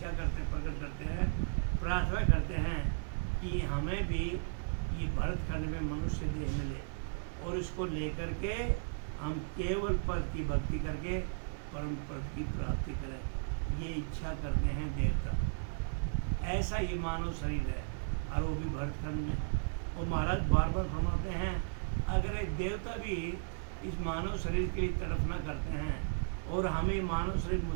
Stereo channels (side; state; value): left; silent; digital silence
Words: करते हैं, प्रकट करते हैं, प्रार्थना करते हैं कि हमें भी ये भरत खंड में मनुष्य देह मिले। और इसको लेकर के हम केवल पद की भक्ति करके परम पद की प्राप्ति करें, ये इच्छा करते हैं देवता। ऐसा ये मानव शरीर है, और वो भी भरतखंड में। वो महाराज बार बार फरमाते हैं, अगर एक देवता भी इस मानव शरीर के लिए तड़फना करते हैं और हमें मानव शरीर